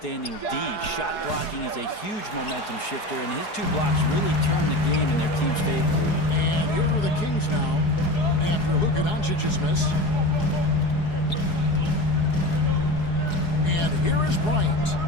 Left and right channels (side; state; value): right; late; 4.8 ms